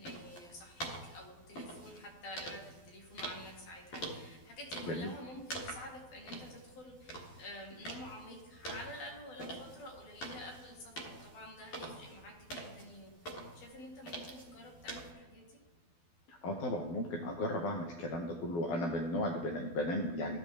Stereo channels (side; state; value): right; late; 12 ms